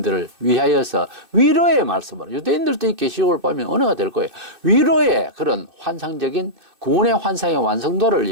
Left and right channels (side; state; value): left; late; 2.6 ms